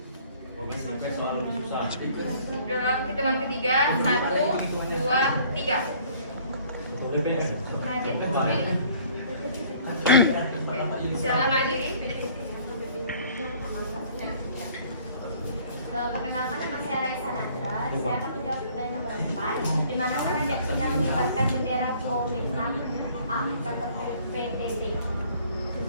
Dalam hitungan ketiga, 1, 2, 3. Silakan diri. Perkenalkan, nama saya Raisa Nandra. Saya akan menjawab pertanyaan nomor 4. Di mana Raja Cina mengibarkan bendera Kuomintang? A. Kantor PBB.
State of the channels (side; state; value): both; inverted; correlation -0.55